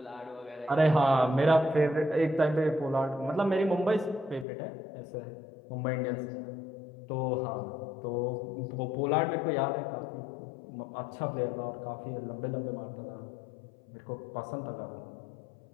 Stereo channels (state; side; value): drops out; right; at 4.5 s